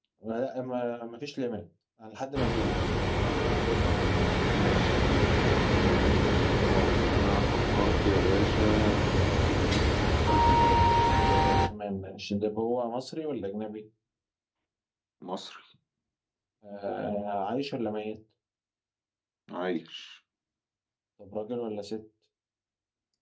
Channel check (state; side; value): identical; both; correlation 1.00